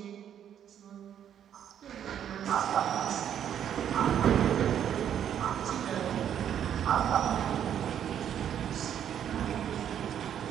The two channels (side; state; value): left; quieter; 9.5 dB